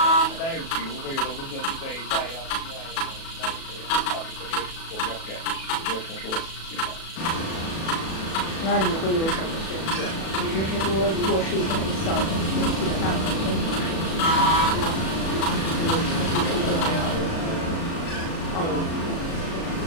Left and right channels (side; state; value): right; late; 37 ms